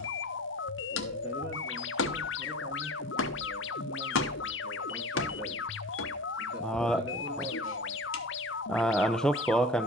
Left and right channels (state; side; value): normal; both; correlation 0.36